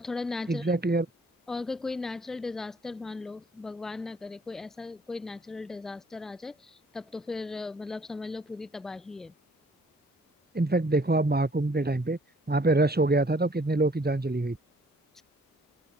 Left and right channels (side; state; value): both; normal; correlation 0.60